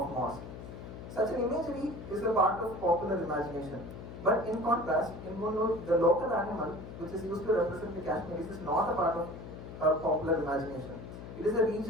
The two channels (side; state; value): left; noise; hum, 11 dB below the sound